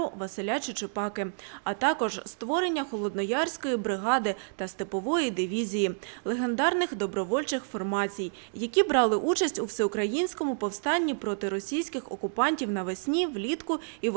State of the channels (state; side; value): silent; left; digital silence